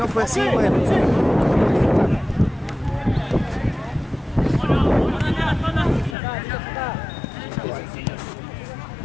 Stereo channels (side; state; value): right; drops out; at 6.2 s